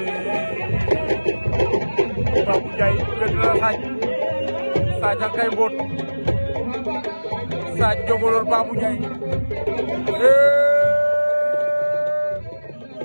Babou Ndiaye wet na Sadio kay mbot Sadio Bolol Babou Ndiaye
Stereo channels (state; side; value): inverted; both; correlation -1.00